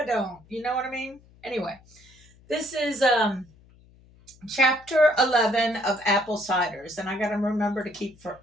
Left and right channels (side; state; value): left; noise; hum, 27 dB below the sound